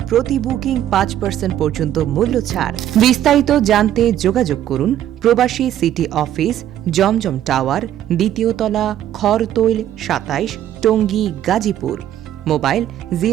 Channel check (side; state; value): left; quieter; 11.7 dB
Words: প্রতি বুকিং 5% পর্যন্ত মূল্য ছাড়। বিস্তারিত জানতে যোগাযোগ করুন প্রবাসী সিটি অফিস, জমজম টাওয়ার, দ্বিতীয় তলা, খরতৈল 27, টঙ্গী, গাজীপুর। মোবাইল